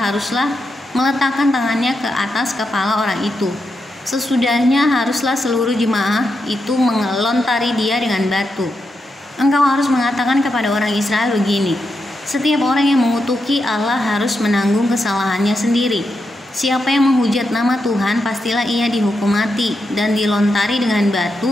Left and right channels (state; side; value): normal; both; correlation 0.85